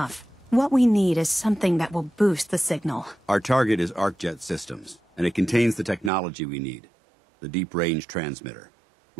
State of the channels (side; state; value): left; drops out; at 6.1 s